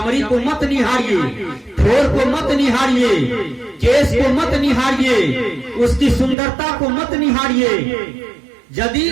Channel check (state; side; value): drops out; left; at 6.4 s